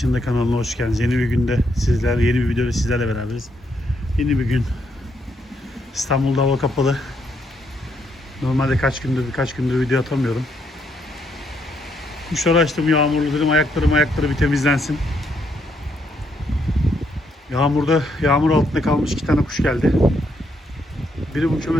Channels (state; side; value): normal; both; correlation 0.75